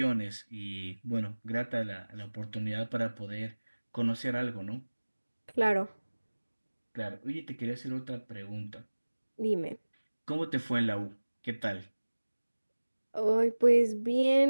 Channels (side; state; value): both; inverted; correlation -1.00